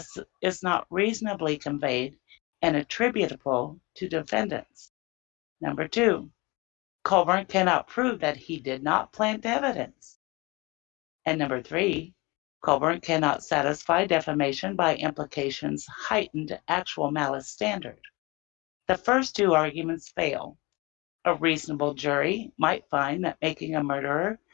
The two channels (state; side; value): quieter; right; 24.9 dB